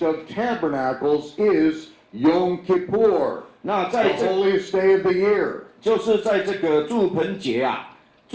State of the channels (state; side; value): identical; both; correlation 1.00